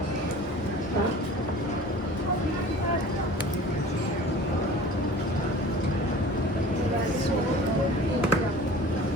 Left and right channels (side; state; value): both; normal; correlation 0.42